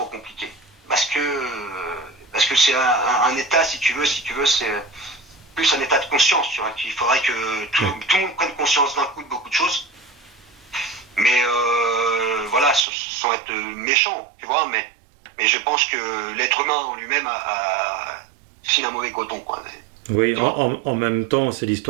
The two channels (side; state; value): left; drops out; at 12.9 s